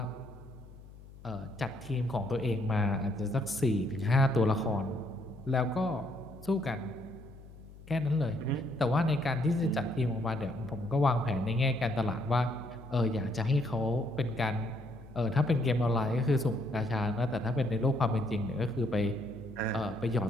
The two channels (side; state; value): left; noise; hum, 19 dB below the sound